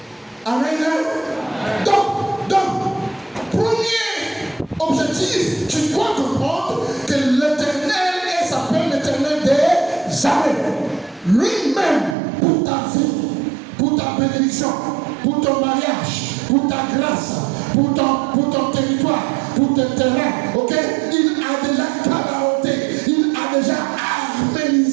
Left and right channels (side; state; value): left; drops out; at 12.2 s